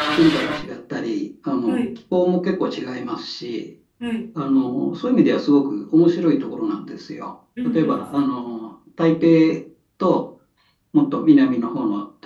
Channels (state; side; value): identical; both; correlation 1.00